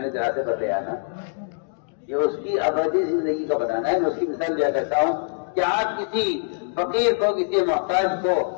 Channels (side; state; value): right; silent; digital silence